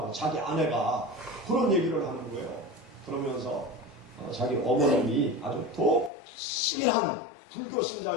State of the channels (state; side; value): drops out; right; at 6.1 s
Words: 자기 아내가 그런 얘기를 하는 거예요. 그러면서 자기 어머님이 아주 독실한 불교